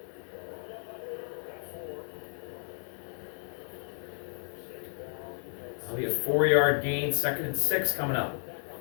That'll be a 4-yard gain, 2nd and 6 coming up.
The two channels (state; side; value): silent; right; 56 dB below the other